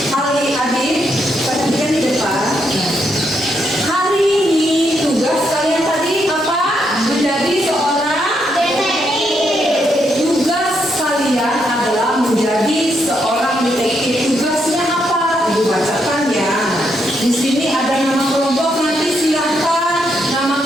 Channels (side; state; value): both; normal; correlation 0.78